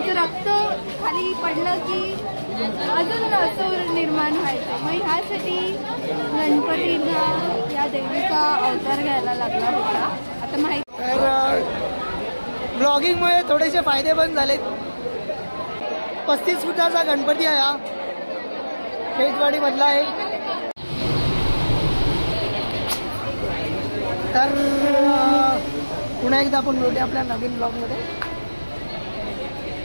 रक्त खाली पडलं की अजून असं निर्माण व्हायचं. मग ह्यासाठी गणपतीला या देवीचा अवतार घ्यायला लागला होता. आता माहिती तर ब्लॉगिंगमुळे थोडेसे फायदे पण झालेत. 35 फुटाचा गणपती आहे हा, खेतवाडी मधला आहे. तर पुन्हा एकदा आपण भेटूया आपल्या नवीन ब्लॉगमध्ये.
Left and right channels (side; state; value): both; inverted; correlation -1.00